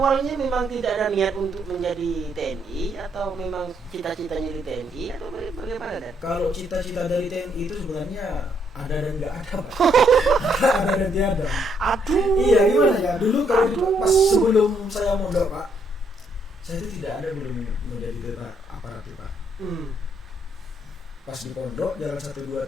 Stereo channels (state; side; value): normal; both; correlation 0.72